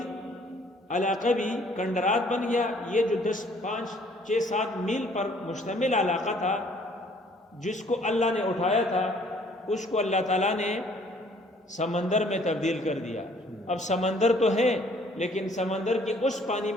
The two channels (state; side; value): normal; both; correlation 0.60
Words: علاقہ بھی کنڈرات بن گیا. یہ جو 5-6-7 میل پر مشتمل علاقہ تھا جس کو اللہ نے اٹھایا تھا، اس کو اللہ تعالیٰ نے سمندر میں تبدیل کر دیا. اب سمندر تو ہے لیکن سمندر کے اس پانی